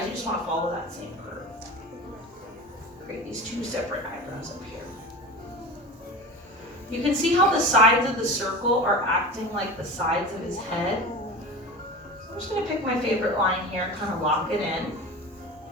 you just want to follow that same curve. Create these two separate eyebrows up here. You can see how the sides of the circle are acting like the sides of his head. I'm just going to pick my favorite line here and kind of lock it in.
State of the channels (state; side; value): normal; both; correlation 0.31